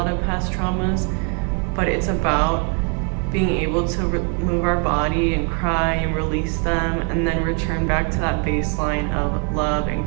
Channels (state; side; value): quieter; left; 37.8 dB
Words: of past traumas. But it's about being able to move our body and cry and release them, and then return back to that baseline of love and